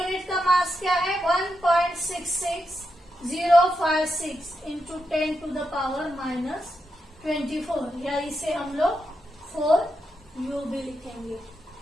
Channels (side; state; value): both; normal; correlation 0.85